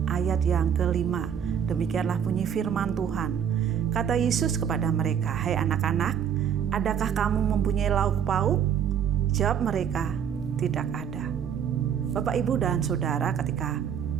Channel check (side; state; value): left; quieter; 8.4 dB